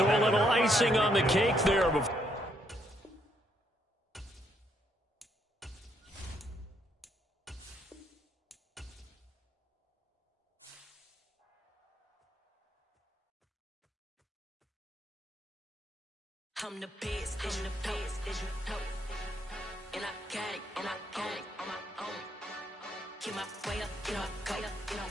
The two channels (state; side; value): normal; both; correlation 0.74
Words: a little icing on the cake there before. I'm the best, as you know. And I got it, on my own. Get my way up, go.